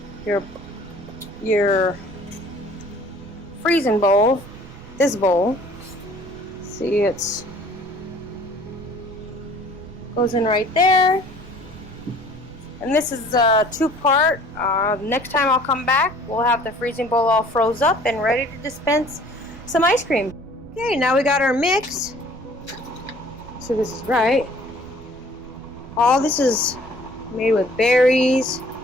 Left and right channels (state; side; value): noise; right; rumble, 18 dB below the sound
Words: your freezing bowl, this bowl. See, it's goes in right there. And this is a 2-part. Next time I'll come back, we'll have the freezing bowl all froze up and ready to dispense some ice cream. Okay, now we got our mix. So this is right. All this is made with berries,